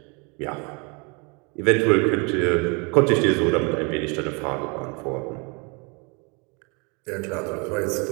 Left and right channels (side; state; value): left; quieter; 31.4 dB